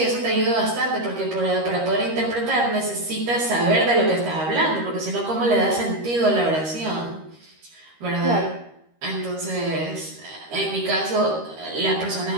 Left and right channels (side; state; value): left; late; 13 ms